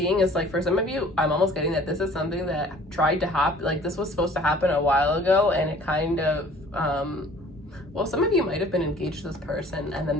is like, for some of you, I'm almost getting that this is something that tried to happen. Like this was supposed to happen a while ago, and it kind of well, some of you might have been engaged to this person and then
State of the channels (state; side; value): normal; both; correlation 0.51